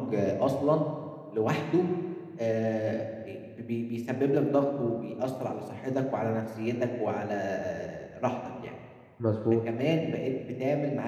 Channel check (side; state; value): both; identical; correlation 1.00